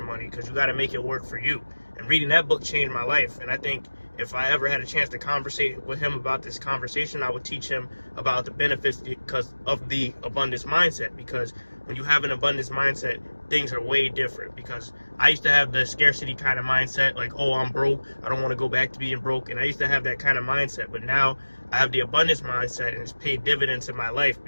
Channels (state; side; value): inverted; both; correlation -1.00